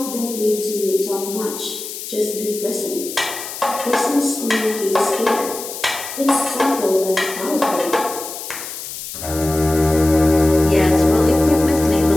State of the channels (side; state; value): left; noise; hiss, 9 dB below the sound